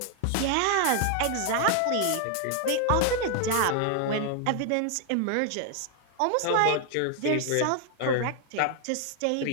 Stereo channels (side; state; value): both; different; correlation 0.00